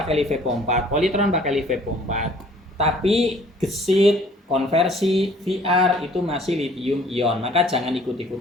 LiFePO 4, Polytron pakai LiFePO 4. Tapi gesit, konversi, VR itu masih lithium ion. Maka jangan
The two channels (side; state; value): both; normal; correlation 0.55